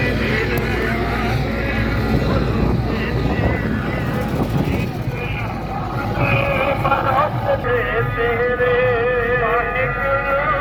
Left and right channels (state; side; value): identical; both; correlation 1.00